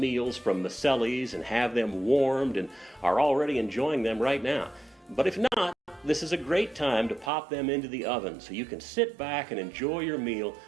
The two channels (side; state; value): left; drops out; at 7.3 s